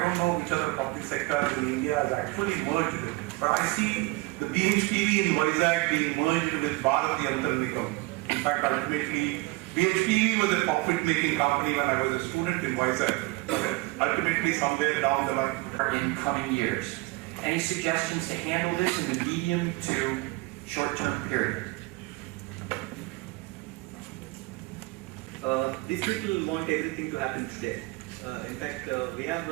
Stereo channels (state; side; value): quieter; left; 22.4 dB